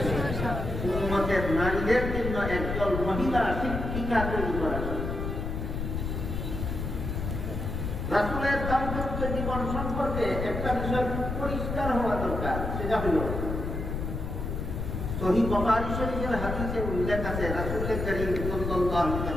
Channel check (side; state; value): left; noise; rumble, 3 dB below the sound